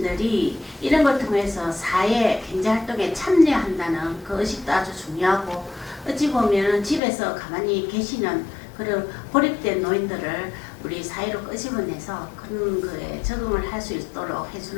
이런 걸 통해서 사회 경제활동에 참여한다는 그 의식도 아주 중요하고 어찌 보면 집에서 가만히 계시는 그런 고립된 노인들을 우리 사회로 끄집어내서 그런 거에 적응을 할 수 있도록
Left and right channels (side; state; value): right; drops out; at 7.0 s